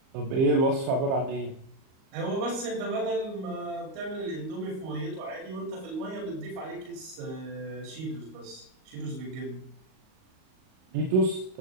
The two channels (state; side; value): late; left; 38 ms